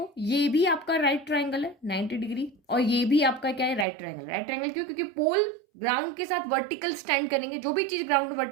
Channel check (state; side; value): drops out; left; at 3.9 s